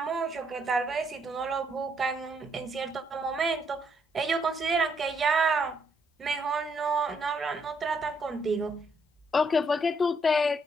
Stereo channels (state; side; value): normal; both; correlation 0.73